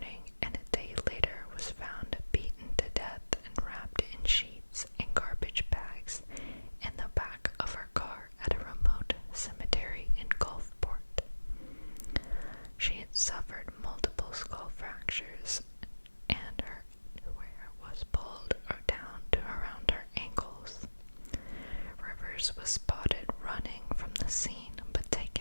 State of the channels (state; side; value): inverted; both; correlation -1.00